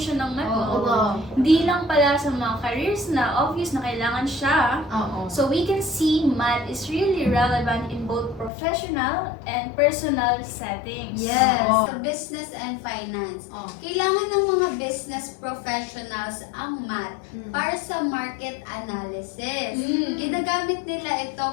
ng math. Oo. no? Hindi lang pala sa mga careers na obvious na kailangan siya. Oo. So we can see math is really relevant in both professional and personal settings. Yes, Oo. sa business and finance. Oo. Kailangan ng mga business professionals ang math Mm. para sa market analysis. Mm. Ginagamit nila ito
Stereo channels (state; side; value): drops out; right; at 8.5 s